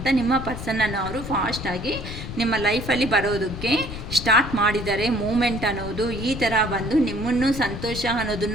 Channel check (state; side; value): noise; left; rumble, 8 dB below the sound